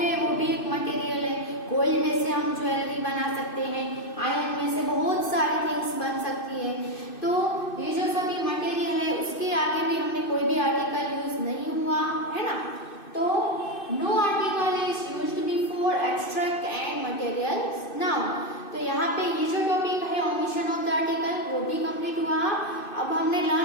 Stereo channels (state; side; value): late; right; 2.6 ms